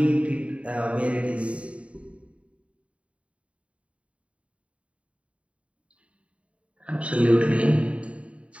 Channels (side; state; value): left; late; 0.063 ms